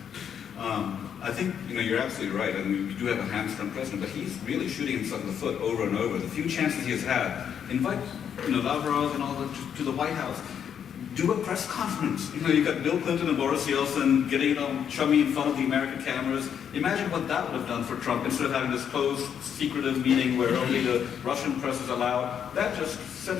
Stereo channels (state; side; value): quieter; right; 8.3 dB